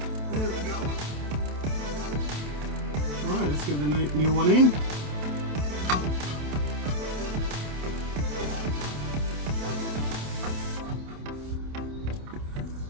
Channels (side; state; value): left; late; 27 ms